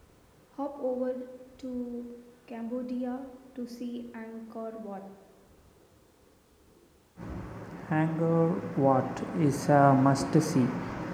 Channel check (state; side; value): identical; both; correlation 1.00